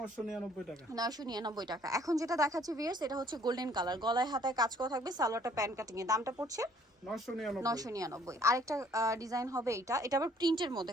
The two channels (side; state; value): both; normal; correlation 0.60